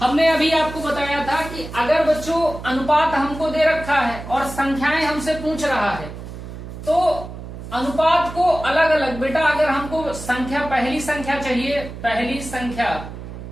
अभी आपको बताया था कि अगर बच्चों अनुपात हमको दे रखा है और संख्याएं हमसे पूछ रहा है, तो अनुपात को अलग अलग बेटा, अगर हमको संख्या पहली संख्या चाहिए, पहली संख्या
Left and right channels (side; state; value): right; noise; hum, 11 dB below the sound